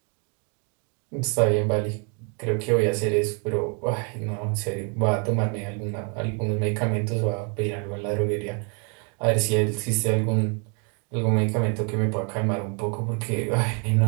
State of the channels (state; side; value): quieter; left; 37.2 dB